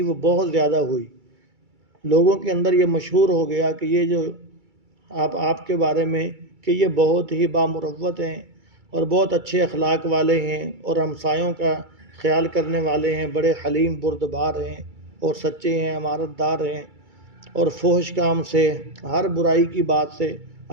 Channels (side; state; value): left; late; 2.3 ms